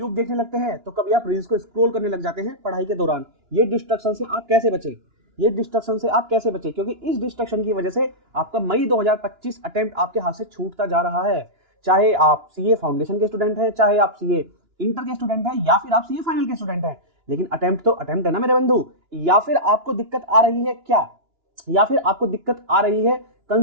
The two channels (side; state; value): left; late; 2.9 ms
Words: देखने लगते हैं, तो कभी आप रील्स को स्क्रॉल करने लग जाते हैं पढ़ाई के दौरान। ये डिस्ट्रक्शन से आप कैसे बचे? ये डिस्ट्रक्शन से आप कैसे बचे? क्योंकि इस डिस्ट्रक्शन की वजह से आपका मई 2025 अटेम्प्ट आपके हाथ से छूटता जा रहा है। चाहे आप सीए फाउंडेशन के स्टूडेंट हैं, चाहे आप सीए इंटर के स्टूडेंट हैं, या फिर आप सीए फाइनल के स्टूडेंट हैं, लेकिन अटेम्प्ट तो अटेम्प्ट है ना मेरे बंधु। या फिर आपको दिक्कत आ रही है क्या? या फिर आपको दिक्कत आ रही है